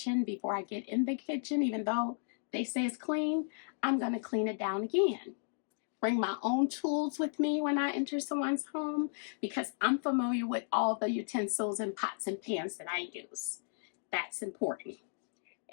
before I get in the kitchen. Even though they say it's clean, I'm going to clean it down again. Bring my own tools with me when I enter someone's home because I'm familiar with all the utensils and pots and pans that I use. That's important.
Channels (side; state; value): right; silent; digital silence